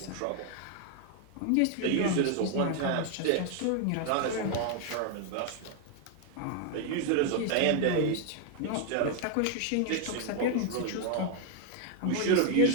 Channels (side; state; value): both; different; correlation 0.00